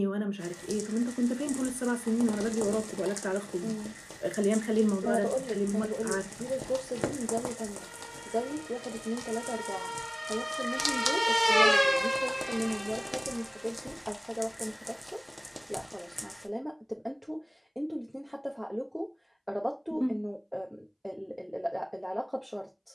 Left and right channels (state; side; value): identical; both; correlation 1.00